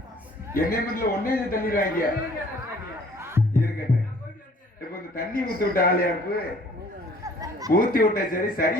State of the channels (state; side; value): normal; both; correlation 0.55